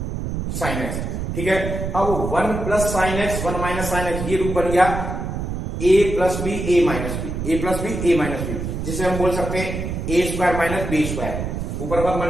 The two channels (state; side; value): noise; right; rumble, 4 dB below the sound